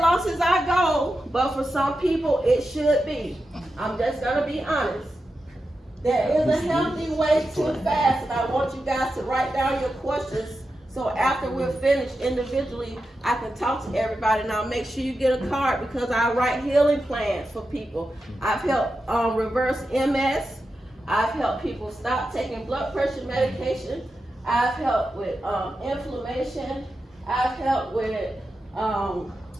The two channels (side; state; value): both; normal; correlation 0.90